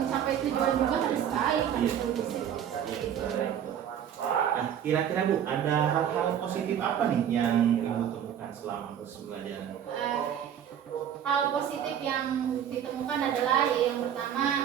tujuan juga harus baik, harus kondusif. Nah, kira-kira Bu, ada hal-hal positif apa nih yang Ibu temukan selama proses pembelajaran? Hal positif yang ditemukan adalah yang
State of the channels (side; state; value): left; quieter; 9.4 dB